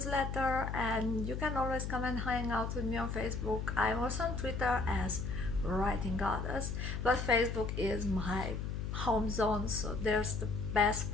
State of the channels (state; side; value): noise; left; hum, 3 dB below the sound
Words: and you can always come and hang out with me on Facebook. I'm also on Twitter as Writing Goddess, but Facebook is my home zone, so there's the best